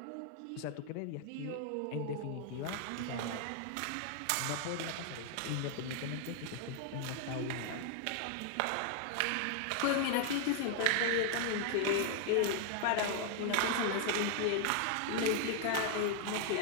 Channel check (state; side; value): different; both; correlation 0.00